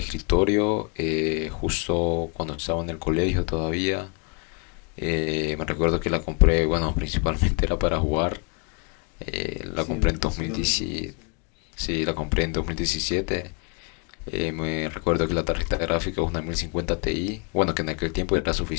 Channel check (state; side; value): quieter; right; 33.9 dB